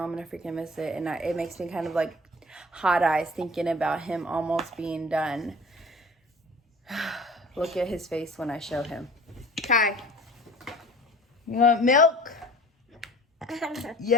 I'm gonna freaking miss it, and it makes me kind of like hot eyes thinking about him almost being done. Look at his face when I show him. Kai, you want milk?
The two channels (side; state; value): both; normal; correlation 0.44